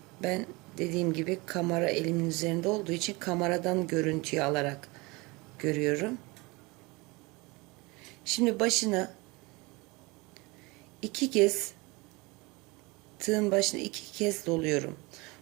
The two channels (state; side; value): quieter; left; 25.1 dB